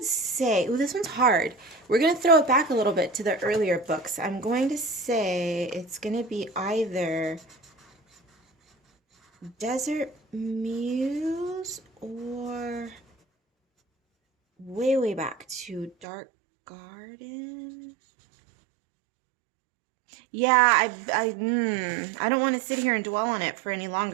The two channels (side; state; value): left; drops out; at 16.1 s